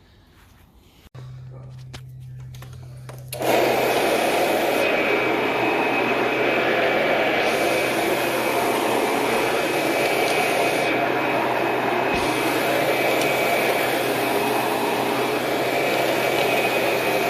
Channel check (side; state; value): both; identical; correlation 1.00